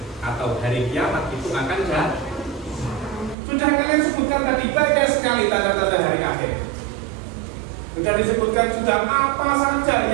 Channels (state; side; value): drops out; left; at 3.4 s